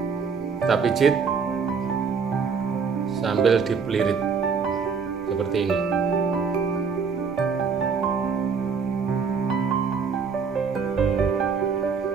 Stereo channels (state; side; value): quieter; left; 5.8 dB